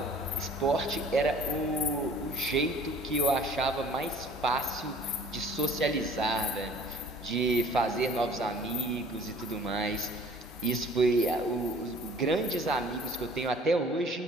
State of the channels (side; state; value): both; normal; correlation 0.51